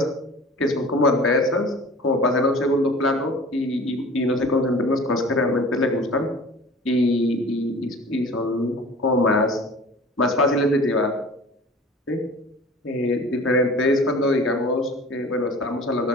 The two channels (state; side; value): normal; both; correlation 0.43